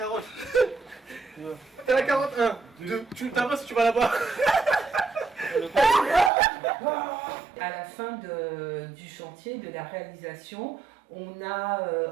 T'as la carotte. 1, 2. Tu t'as si tu vas là-bas. À la fin du chantier, de la réalisation, on a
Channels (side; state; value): left; drops out; at 6.3 s